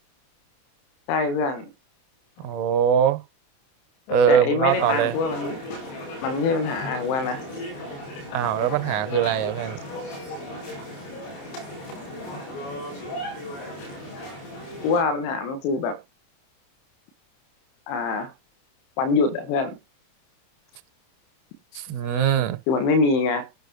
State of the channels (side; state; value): right; late; 28 ms